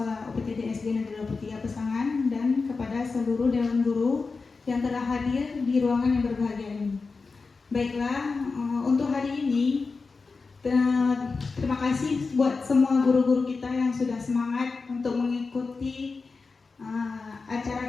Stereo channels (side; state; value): right; quieter; 4.3 dB